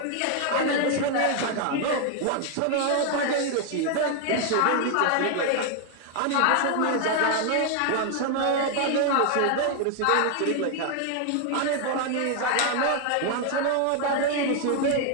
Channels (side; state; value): both; different; correlation 0.00